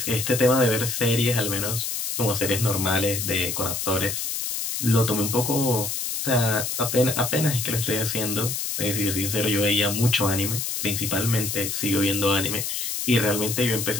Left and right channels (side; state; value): left; noise; hiss, 3 dB below the sound